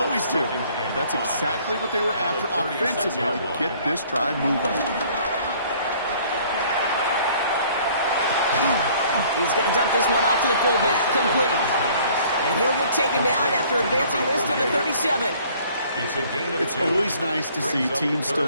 do. That's exactly what they were after offensively to get this drive moving. He's going to dump this one off to the fullback. Complete. And he'll get taken down after advancing this to the 37. It's always nice to see teams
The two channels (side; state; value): both; inverted; correlation -0.56